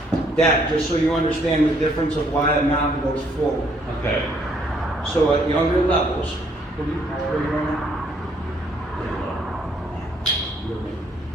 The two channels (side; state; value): both; normal; correlation 0.67